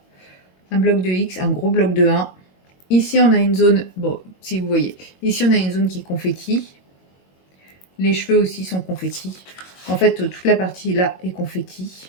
un bloc de X, un gros bloc de 1. Ici, on a une zone, bon, si vous voyez, ici, on a une zone qui est confetti. Les cheveux aussi sont confetti. En fait, toute la partie là est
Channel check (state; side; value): late; right; 22 ms